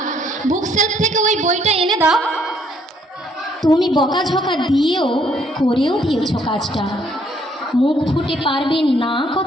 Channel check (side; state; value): both; normal; correlation 0.67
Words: বুক সেলফ থেকে ওই বইটা এনে দাও। তুমি বকাঝকা দিয়েও করেও দিয়েছ কাজটা, মুখ ফুটে পারবে না